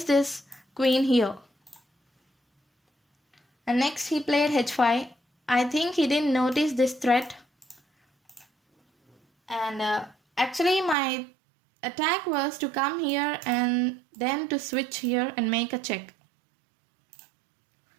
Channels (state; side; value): drops out; left; at 11.0 s